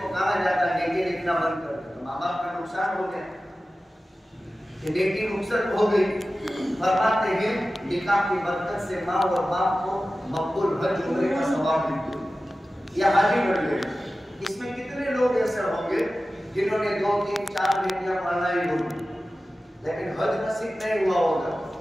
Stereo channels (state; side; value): normal; both; correlation 0.95